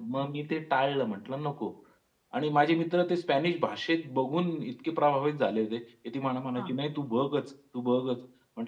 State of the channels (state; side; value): identical; both; correlation 1.00